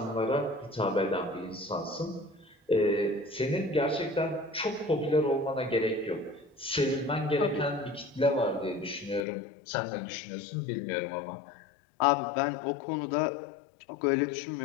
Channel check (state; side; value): drops out; right; at 9.2 s